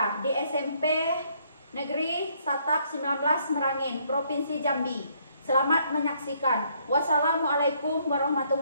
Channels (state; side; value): inverted; both; correlation -0.68